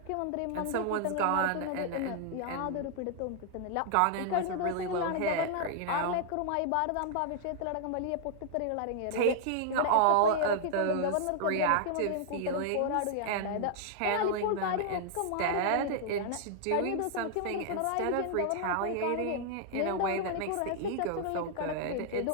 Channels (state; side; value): different; both; correlation -0.01